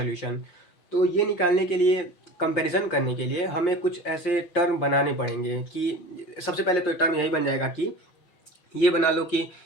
तो ये निकालने के लिए, कंपैरिजन करने के लिए हमें कुछ ऐसे टर्म बनाने पड़ेंगे कि सबसे पहले तो टर्म यही बन जाएगा कि ये बना लो कि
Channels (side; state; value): right; late; 5.6 ms